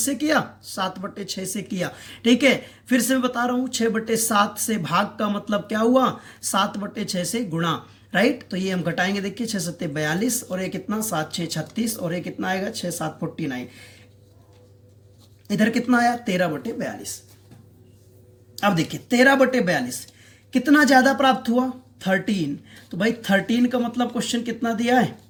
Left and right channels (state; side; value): identical; both; correlation 1.00